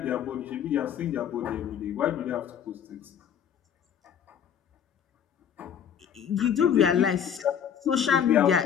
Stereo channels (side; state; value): right; quieter; 8.5 dB